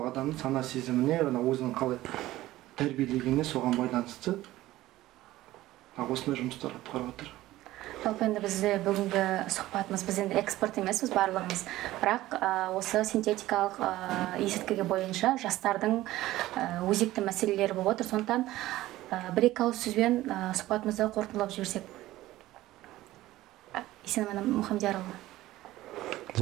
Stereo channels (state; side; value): quieter; left; 16.2 dB